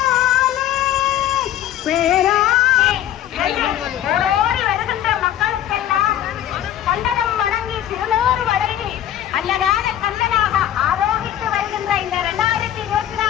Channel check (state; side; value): quieter; right; 11.7 dB